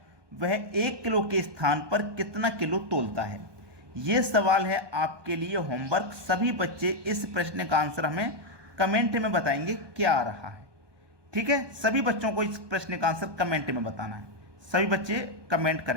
वह 1 किलो के स्थान पर कितना किलो तोलता है? यह सवाल है आपके लिए होमवर्क। सभी बच्चे इस प्रश्न का आंसर हमें कमेंट में बताएंगे क्या आ रहा है। ठीक है, सभी बच्चों को इस प्रश्न का आंसर कमेंट में बताना है। सभी बच्चे कमेंट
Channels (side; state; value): left; late; 1.2 ms